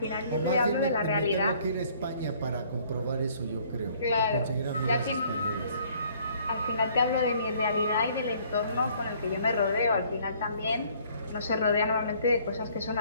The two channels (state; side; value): inverted; both; correlation -0.60